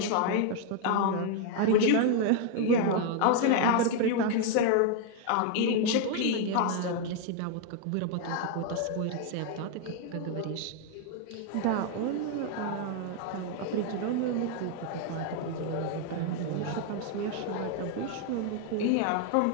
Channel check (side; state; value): both; different; correlation 0.00